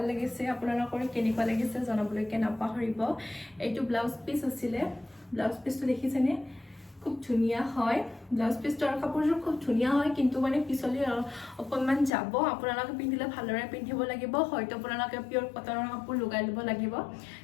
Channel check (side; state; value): right; drops out; at 12.1 s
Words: লাগিছে আপোনালোকৰ কেনেকুৱা লাগিছে জনাবলৈকে নাপাহৰিব এইটো ব্লাউজ পিচ আছিলে ব্লাউজ পিচটো দেখিছেনে খুব ধুনীয়া হয় ব্লাউজ পিচটো আৰু কাপোৰযোৰ খুব ধুনীয়া হয় কিন্তু মানে পিছলি অকণমান যাব আপোনালোকে পিন্ধিলে ভালদৰে পিন্ধিব লাগিব হয়তো আপোনালোকে পিয়ৰ কটনৰ কাপোৰ লগাই ল'ব লাগিব